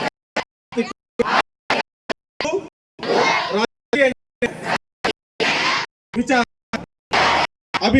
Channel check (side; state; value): both; identical; correlation 1.00